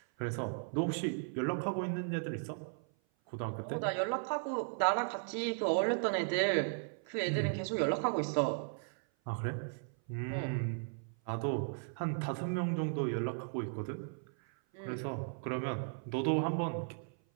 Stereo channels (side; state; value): left; silent; 54 dB below the other